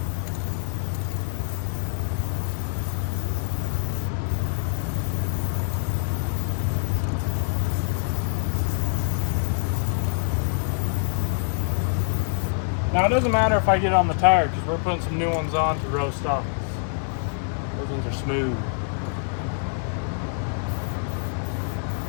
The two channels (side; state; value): right; silent; digital silence